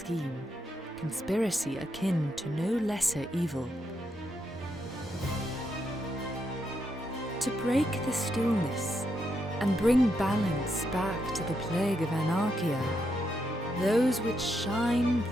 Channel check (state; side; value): normal; both; correlation 0.80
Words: conspiracy akin to no lesser evil. To break the stillness and bring balance back to the plague of anarchia, those which shine